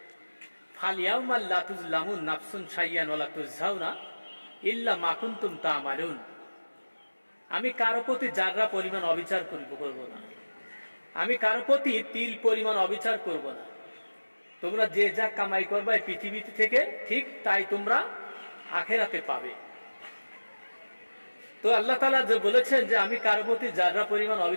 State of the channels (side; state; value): both; inverted; correlation -1.00